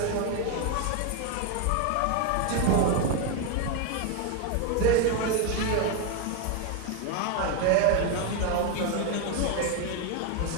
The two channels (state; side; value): different; both; correlation 0.02